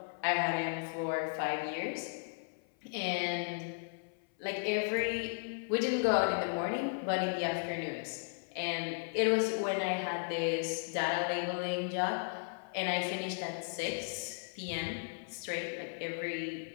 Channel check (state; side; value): silent; right; 54 dB below the other